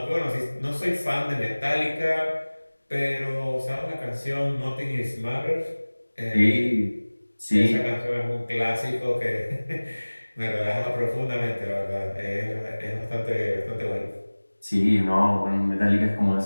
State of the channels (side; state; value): both; inverted; correlation -1.00